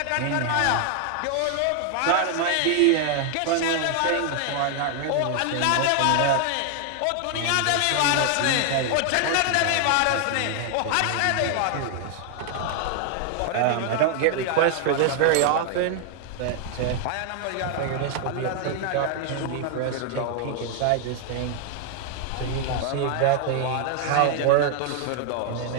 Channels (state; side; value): different; both; correlation 0.00